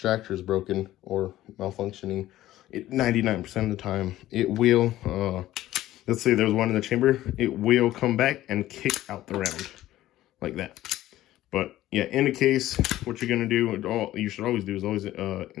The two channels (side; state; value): right; quieter; 14.7 dB